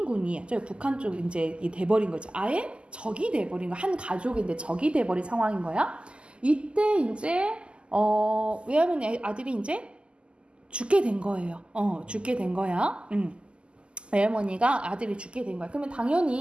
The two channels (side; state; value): left; late; 0.052 ms